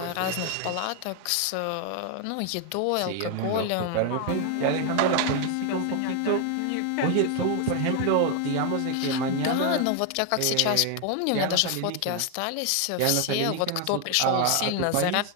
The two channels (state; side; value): different; both; correlation 0.01